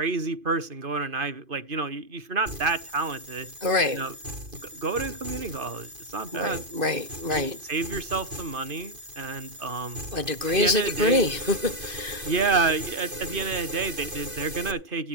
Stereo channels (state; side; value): late; left; 2.5 ms